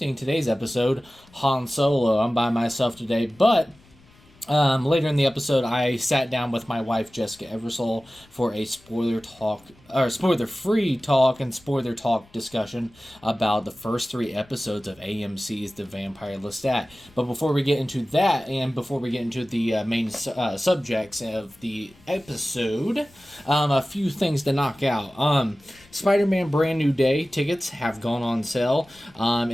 today's episode, Han Solo. I'm by myself today, but later in the episode, I sat down with my wife, Jessica Eversole, for a spoiler-free talk and spoiler talk discussion about the first 3 episodes of AMC's The Vampire Lestat. But before we get into that, and before we get into the main subjects of the episode, a few things to knock out. Spider-Man Brand New Day tickets have gone on sale,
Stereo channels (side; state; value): left; noise; rumble, 28 dB below the sound